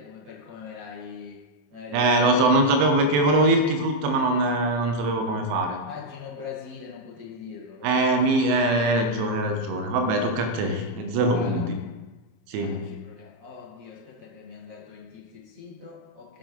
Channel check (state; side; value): late; left; 27 ms